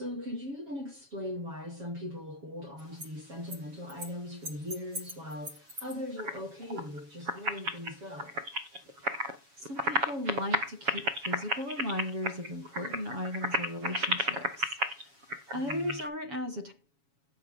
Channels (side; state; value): left; late; 7.2 ms